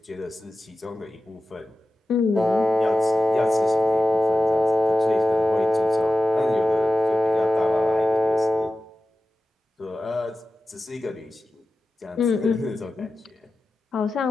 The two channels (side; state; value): both; normal; correlation 0.94